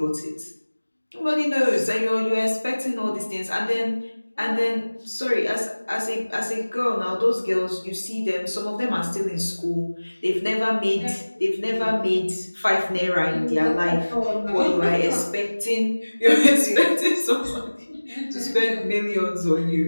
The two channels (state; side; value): inverted; both; correlation -1.00